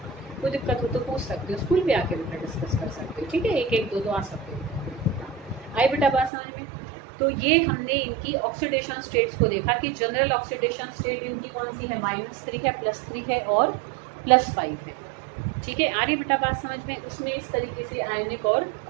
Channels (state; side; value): drops out; left; at 6.3 s